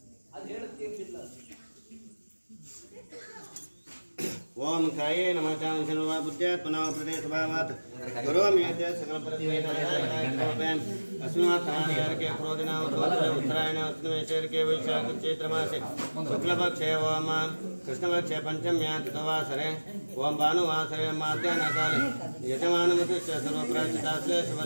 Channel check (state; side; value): inverted; both; correlation -1.00